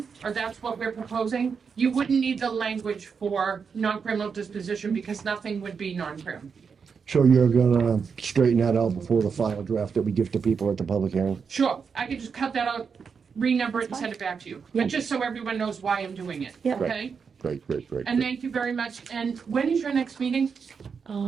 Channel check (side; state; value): left; quieter; 5.9 dB